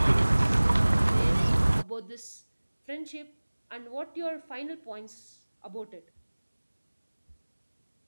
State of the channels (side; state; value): both; inverted; correlation -1.00